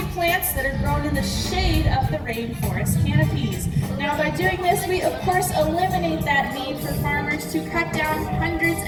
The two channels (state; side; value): identical; both; correlation 1.00